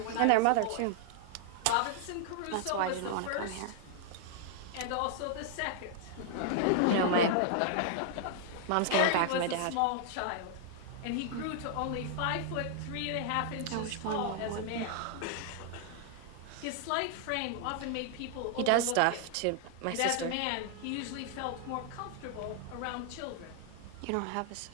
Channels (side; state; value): both; different; correlation 0.00